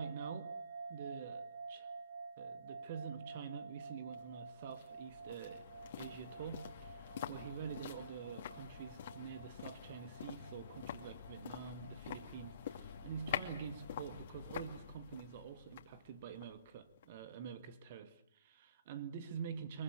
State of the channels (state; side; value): inverted; both; correlation -0.58